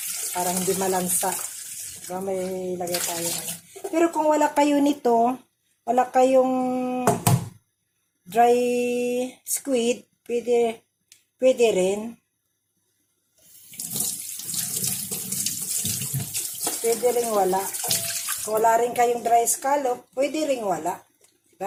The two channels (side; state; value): both; identical; correlation 1.00